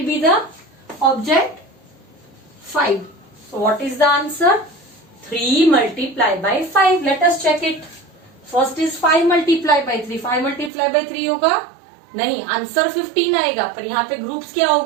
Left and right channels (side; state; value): left; drops out; at 10.7 s